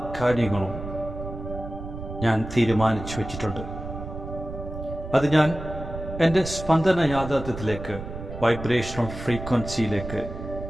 കാര്യങ്ങളും ഞാൻ തീരുമാനിച്ചു വച്ചിട്ടുണ്ട്. അത് ഞാൻ എൻ്റെ സ്പന്ദന യാഥാർത്ഥ്യത്തിലേക്ക്, വൈബ്രേഷണൽ ഫ്രീക്വൻസിയിലേക്ക്,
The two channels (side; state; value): right; noise; rumble, 9 dB below the sound